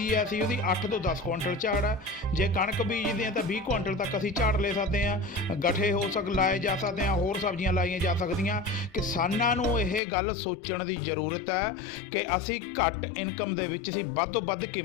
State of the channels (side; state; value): right; drops out; at 10.0 s